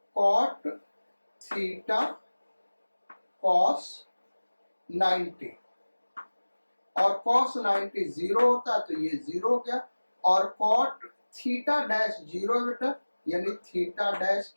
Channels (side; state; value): both; inverted; correlation -1.00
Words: कॉट थीटा कॉस 90, और कॉस 90 जीरो होता है तो ये जीरो हो गया, और कॉट थीटा डैश जीरो बेटा, यानी थीटा डैश